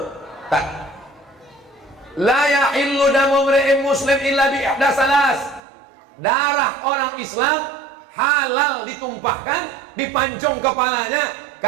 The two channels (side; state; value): left; drops out; at 5.6 s